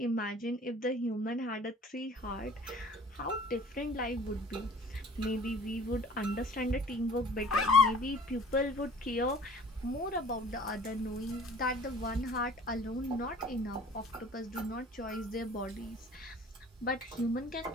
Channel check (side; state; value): both; normal; correlation 0.49